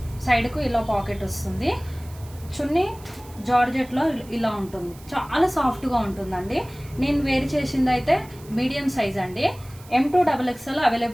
సైడ్కు ఇలా పాకెట్ వస్తుంది. చున్నీ జార్జెట్లో ఇలా ఉంటుంది. చాలా సాఫ్ట్గా ఉంటుందండి. నేను వేర్ చేసింది అయితే మీడియం సైజ్ అండి. M2 XXL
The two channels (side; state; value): right; noise; hiss, 22 dB below the sound